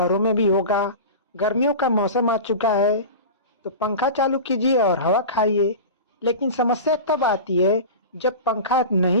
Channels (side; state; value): both; inverted; correlation -0.30